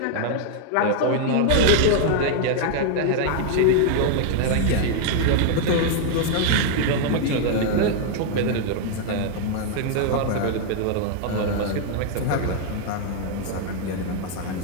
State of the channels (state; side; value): different; both; correlation 0.00